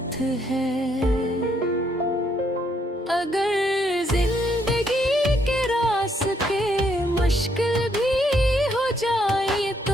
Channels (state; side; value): normal; both; correlation 0.72